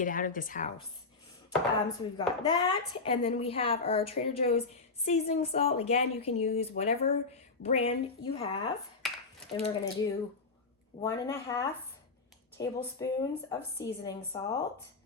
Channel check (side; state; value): right; quieter; 4.1 dB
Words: out of this house. So we've got that, and then we have our Trader Joe's seasoning salt. Again, you can use whatever brand you have. And we're gonna do 1.5 tablespoons of seasoning salt.